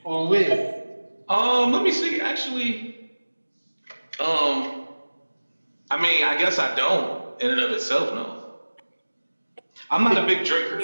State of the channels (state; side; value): inverted; both; correlation -1.00